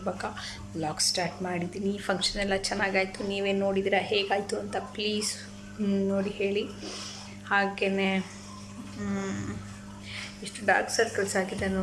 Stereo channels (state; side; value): identical; both; correlation 1.00